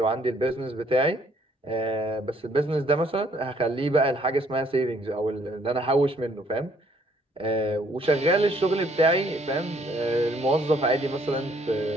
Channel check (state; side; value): normal; both; correlation 0.65